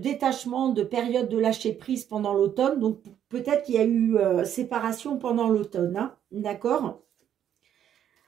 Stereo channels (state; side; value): quieter; left; 9.9 dB